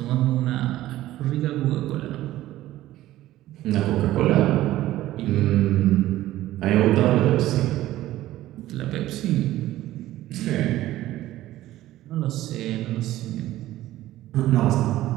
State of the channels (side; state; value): left; quieter; 15.0 dB